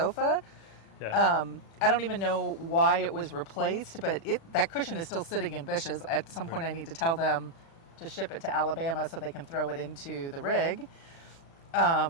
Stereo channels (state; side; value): late; right; 36 ms